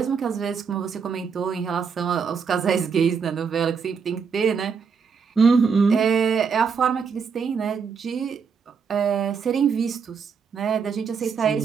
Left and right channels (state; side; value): quieter; left; 6.0 dB